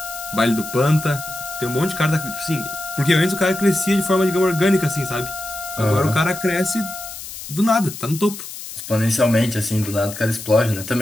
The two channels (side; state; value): left; noise; hiss, 11 dB below the sound